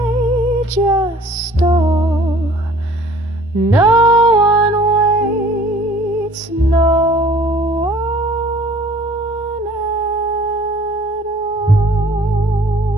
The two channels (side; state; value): both; normal; correlation 0.52